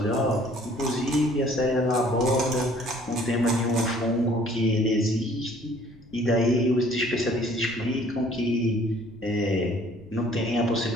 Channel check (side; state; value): left; noise; rumble, 25 dB below the sound